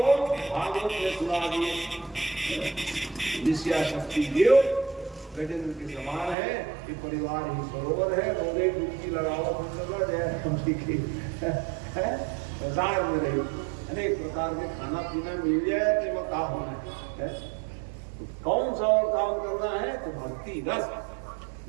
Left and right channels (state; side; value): drops out; left; at 6.4 s